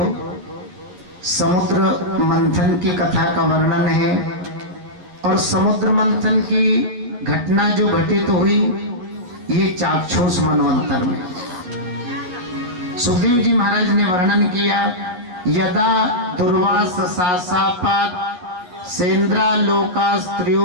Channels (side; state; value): left; late; 11 ms